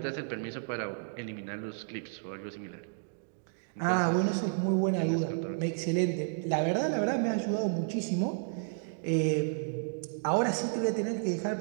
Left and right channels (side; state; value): left; silent; digital silence